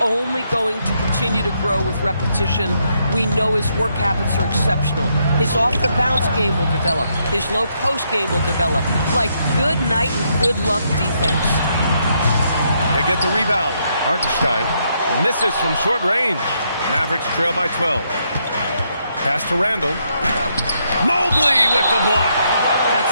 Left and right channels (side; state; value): both; inverted; correlation -0.76